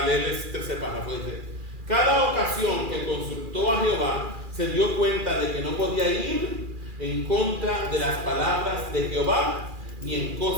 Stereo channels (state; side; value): late; left; 2.4 ms